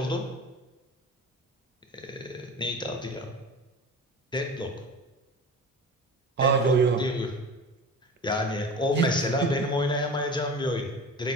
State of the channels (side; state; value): both; normal; correlation 0.35